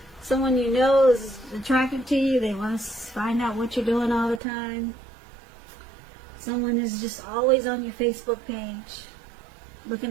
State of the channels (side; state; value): left; drops out; at 4.4 s